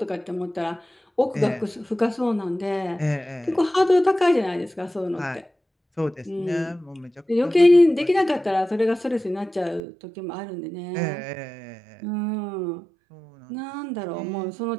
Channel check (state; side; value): drops out; left; at 9.8 s